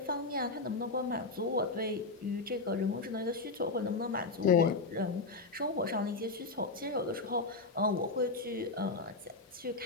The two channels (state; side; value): quieter; right; 3.6 dB